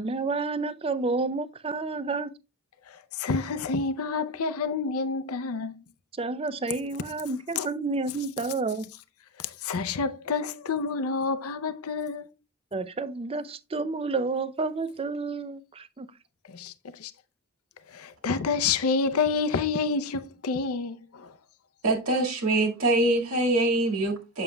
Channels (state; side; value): normal; both; correlation 0.12